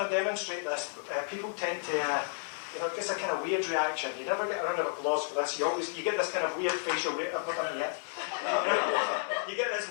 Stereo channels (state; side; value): silent; right; 56 dB below the other